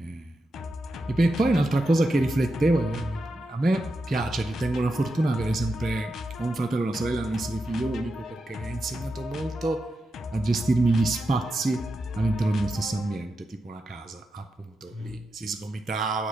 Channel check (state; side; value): normal; both; correlation 0.88